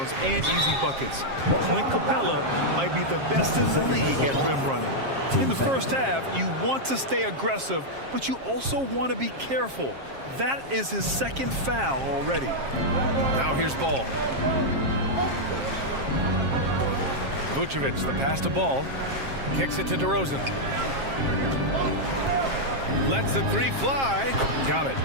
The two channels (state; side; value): late; left; 7.4 ms